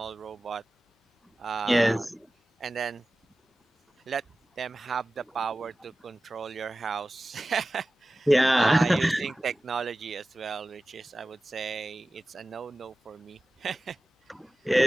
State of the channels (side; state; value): both; normal; correlation 0.96